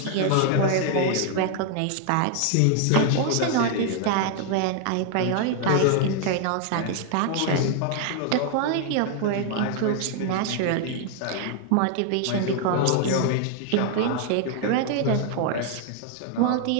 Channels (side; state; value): both; different; correlation 0.00